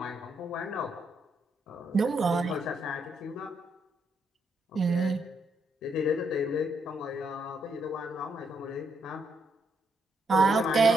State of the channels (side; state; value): both; normal; correlation 0.77